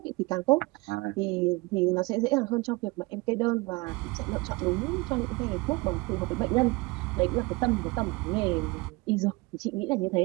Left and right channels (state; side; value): quieter; left; 24.3 dB